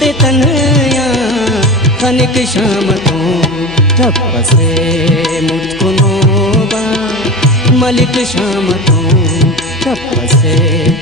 तनया खनिक शामतो तपसे मुतकुनोबा मलिक शामतो तपसे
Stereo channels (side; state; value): both; normal; correlation 0.28